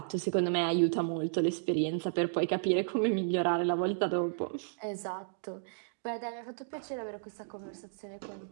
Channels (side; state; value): left; silent; digital silence